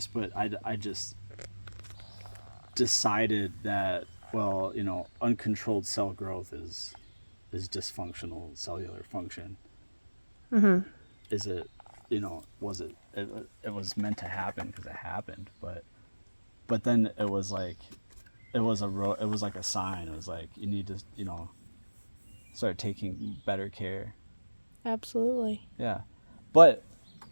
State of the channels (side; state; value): both; inverted; correlation -1.00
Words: but I just decided that, well, you know, uncontrolled cell growth is dysfunctional cellular function. Mm-hmm. Is it, you know, was it was meant to happen because it happened, but then it was like it was like a sign. It was like you need to, you know, start taking better care. Absolutely. Yeah, but